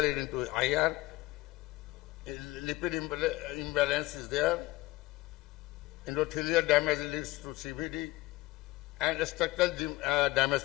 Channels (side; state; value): right; quieter; 19.1 dB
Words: leading to IR, lipid imbalance is there, endothelial damage leads to CVD, and structural damage